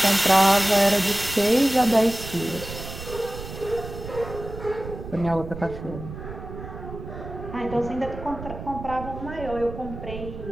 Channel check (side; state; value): right; noise; rumble, 11 dB below the sound